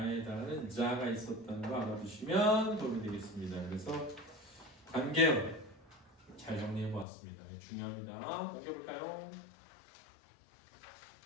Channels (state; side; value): drops out; right; at 7.1 s